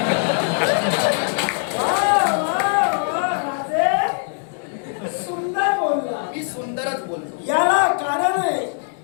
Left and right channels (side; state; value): right; silent; 62 dB below the other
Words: सुंदर बोलला. मी सुंदरच बोलतो. याला कारण आहे